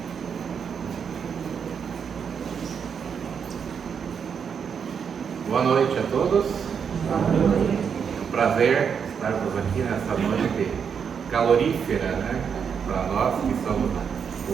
Boa noite a todos. É um prazer estarmos aqui nessa noite calorífera, né? Para nós que somos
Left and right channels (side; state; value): left; quieter; 6.9 dB